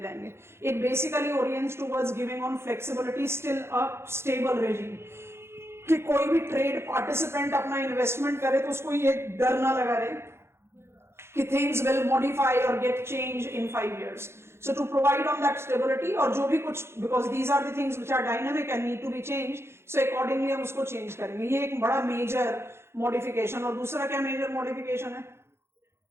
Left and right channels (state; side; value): late; left; 0.12 ms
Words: It basically orients towards giving on flexibility, still a stable regime, कि कोई भी ट्रेड पार्टिसिपेंट अपना इन्वेस्टमेंट करे तो उसको ये डर ना लगा रहे कि थिंग्स विल मॉडिफाई और get change in 5 years. So to provide on that stability, और जो भी कुछ, because these are the things which are dynamic and need to be changed, so accordingly हम उसको चेंज करेंगे. ये एक बड़ा मेजर मॉडिफिकेशन. और दूसरा क्या मेजर मॉडिफिकेशन है,